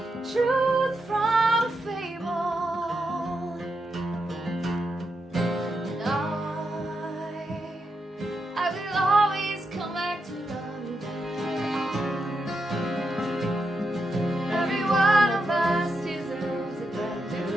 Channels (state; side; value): normal; both; correlation 0.85